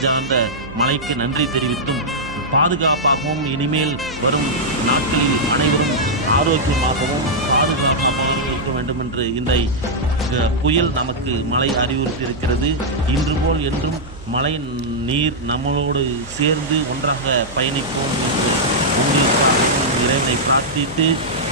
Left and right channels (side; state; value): right; noise; hum, 17 dB below the sound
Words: மலைக்கு நன்றி தெரிவித்தும் பாதுகாப்பாகவும் இனிமேல் வரும் நாட்களில் அனைவரும் ஆரோக்கியமாகவும் பாதுகாப்பாகவும் இருக்க வேண்டும் என்று இந்த புயல் நமக்கு மழை அறிவுறுத்தி இருக்கிறது. இன்று போல் என்றும் மழை நீர் நம்மளோடு சேர்ந்து ஒன்றாக பயணிப்போம் என்று உங்களுக்காகவும் இறைவனை பிரார்த்தித்து